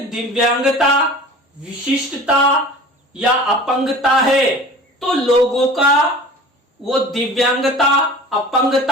दिव्यांगता, विशिष्टता या अपंगता है तो लोगों का वो दिव्यांगता,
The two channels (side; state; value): both; normal; correlation 0.41